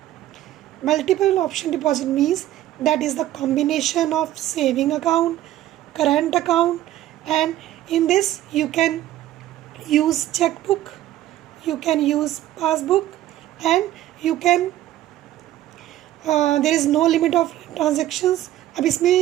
Multiple option deposit means that is the combination of saving account, current account, and in this you can use checkbook, you can use passbook, and you can there is no limit of transactions। अब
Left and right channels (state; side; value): quieter; left; 13.7 dB